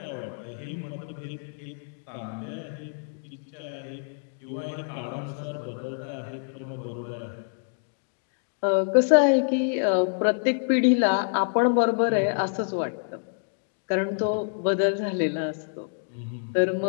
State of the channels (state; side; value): silent; right; digital silence